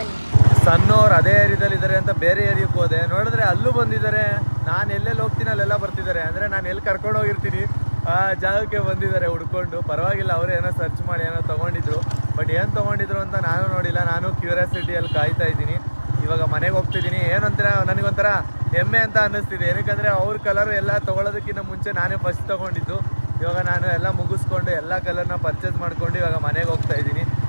ಸಣ್ಣವ್ರು ಅದೇ ಏರಿಯಾದಲ್ಲಿ ಇದ್ದಾರೆ ಅಂತ ಬೇರೆ ಏರಿಯಾಕ್ಕೆ ಹೋದೆ, ನೋಡಿದ್ರೆ ಅಲ್ಲೂ ಬಂದಿದ್ದಾರೆ. ನಾನು ಎಲ್ಲೆಲ್ಲಿ ಹೋಗ್ತೀನಿ ಅಲ್ಲೆಲ್ಲ ಬರ್ತಿದ್ದಾರೆ. ಅಂದರೆ ನಾನು ಎಲ್ಲಿ ಕರ್ಕೊಂಡು ಹೋಗಿರ್ತೀನಿ ಆ ಜಾಗಕ್ಕೆ ಬಂದಿದ್ದಾರೆ ಹುಡ್ಕೊಂಡು. ಪರವಾಗಿಲ್ಲ, ಅವರು ಏನೋ ಸರ್ಚ್ ಮಾಡಿ ಏನೋ ತೊಗೊಂಡಿದ್ರು. ಬಟ್ ಏನು ತೊಗೊಂಡಿದ್ರು ಅಂತ ನಾನು ನೋಡಿಲ್ಲ. ನಾನು ಕ್ಯೂರಿಯಾಸಿಟಿಯಲ್ಲಿ ಕಾಯ್ತಾ ಇದ್ದೀನಿ. ಇವಾಗ ಮನೆಗೆ ಹೋಗ್ತಿದ್ದೀನಿ. ಏನಂತೀರ, ನನಗೊಂಥರ ಹೆಮ್ಮೆ ಅಂತ ಅನ್ನಿಸ್ತಿದೆ. ಏನಕ್ಕಂದರೆ ಅವ್ರ ಕಲರ್ ಎಲ್ಲ ತೊಗೊಳೋದಕ್ಕಿಂತ ಮುಂಚೆ ನಾನೇ ಫಸ್ಟ್ ತೊಗೊಂಡಿದ್ದು. ಇವಾಗ ನಾನು ಎಲ್ಲ ಮುಗಿಸ್ಕೊಂಡು ಎಲ್ಲ ಕಲರ್ನ ಪರ್ಚೇಸ್ ಮಾಡ್ಕೊಂಡು ಇವಾಗ ಮನೆಗೆ ಹೋಗ್ತಾ ಇದ್ದೀನಿ.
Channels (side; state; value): both; inverted; correlation -1.00